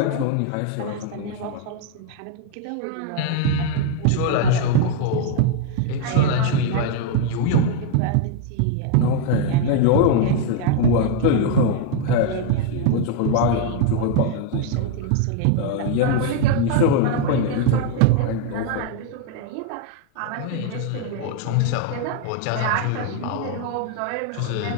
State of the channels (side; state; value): both; different; correlation 0.00